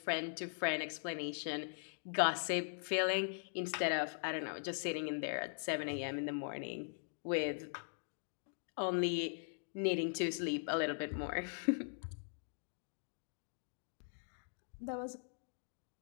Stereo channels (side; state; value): right; silent; digital silence